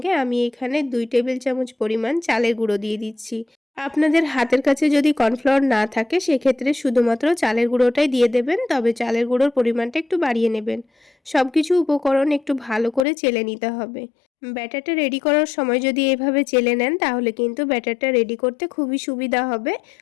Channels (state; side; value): drops out; right; at 13.1 s